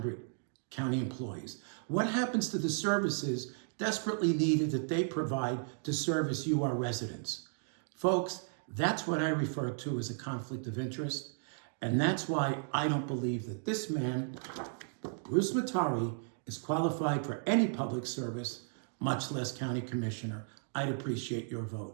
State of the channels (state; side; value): silent; left; digital silence